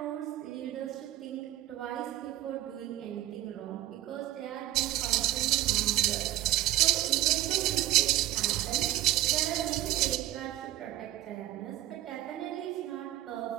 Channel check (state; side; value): quieter; left; 14.3 dB